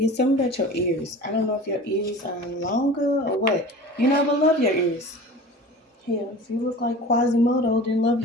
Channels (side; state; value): both; normal; correlation 0.38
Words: something about your ears. I don't know if your ears are longer or what. You never love your ears. Hell, if you look like Quasimodo, then love